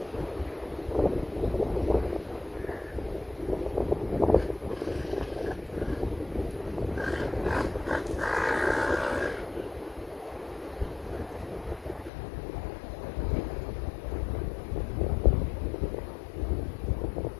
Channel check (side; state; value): right; drops out; at 12.1 s